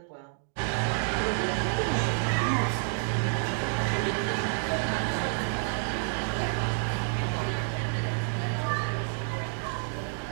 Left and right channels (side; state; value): left; silent; 56 dB below the other